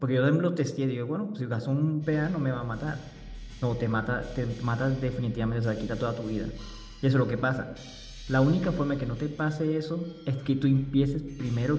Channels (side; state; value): both; identical; correlation 1.00